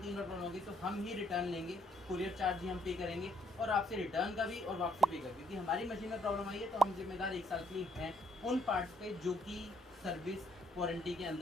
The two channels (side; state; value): both; normal; correlation 0.69